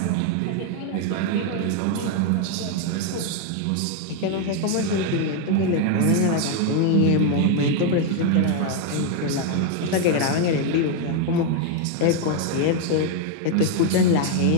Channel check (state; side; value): different; both; correlation 0.01